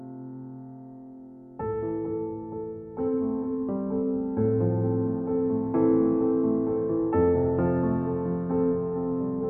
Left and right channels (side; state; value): both; identical; correlation 1.00